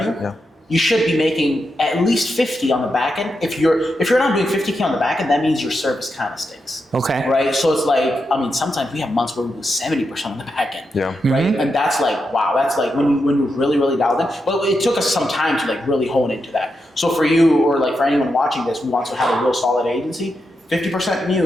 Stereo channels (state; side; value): normal; both; correlation 0.86